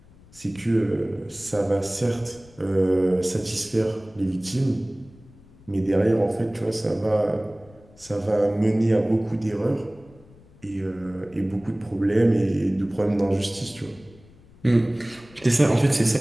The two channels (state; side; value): noise; left; rumble, 25 dB below the sound